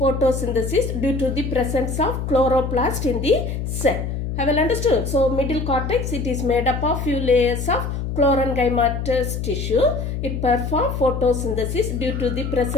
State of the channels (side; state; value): left; noise; hum, 4 dB below the sound